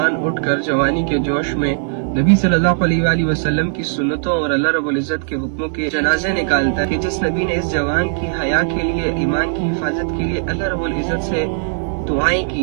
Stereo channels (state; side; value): silent; left; 67 dB below the other